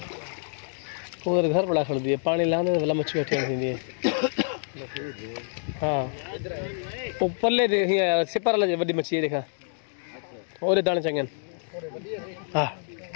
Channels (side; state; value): right; silent; digital silence